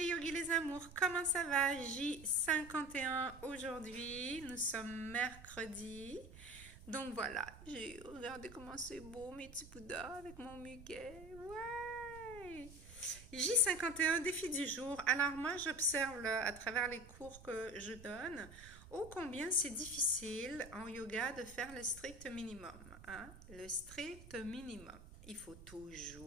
yogis, les amours, comment ça va? J51 aujourd'hui, nous sommes mercredi. Donc voilà, regardez comment c'est beau mes petits Bouddhas avec mon muguet. Ouais! J51, défi du jour. Alors moi j'observe à travers les cours que je donne, ô combien c'est difficile en yoga de faire le strict minimum. Hein? Le strict minimum. Il faut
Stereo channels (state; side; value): noise; right; rumble, 17 dB below the sound